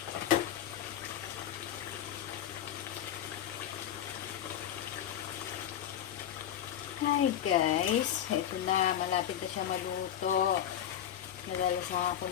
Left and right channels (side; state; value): right; quieter; 10.6 dB